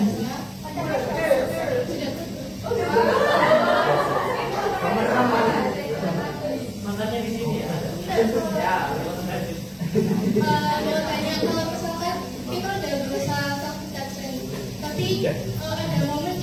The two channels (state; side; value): identical; both; correlation 1.00